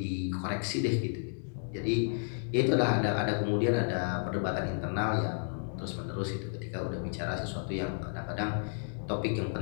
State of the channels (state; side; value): silent; right; digital silence